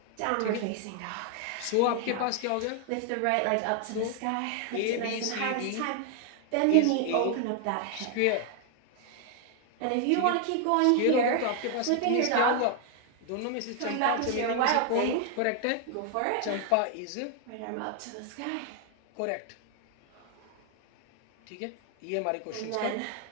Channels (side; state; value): both; different; correlation 0.00